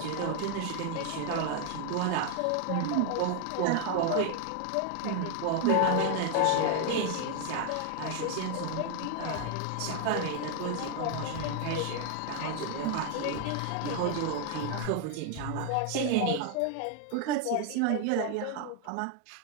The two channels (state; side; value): different; both; correlation 0.00